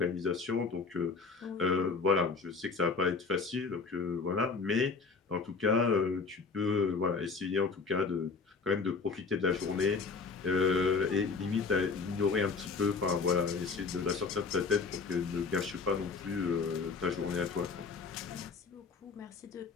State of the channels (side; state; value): right; quieter; 4.6 dB